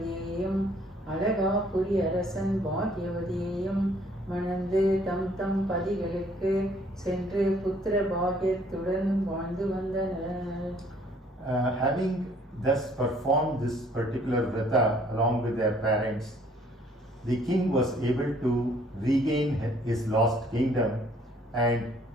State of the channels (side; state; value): both; normal; correlation 0.61